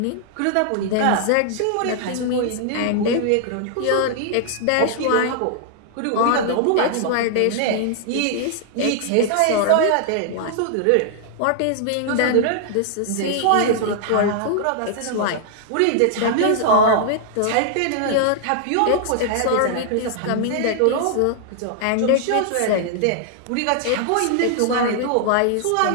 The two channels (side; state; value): both; different; correlation -0.01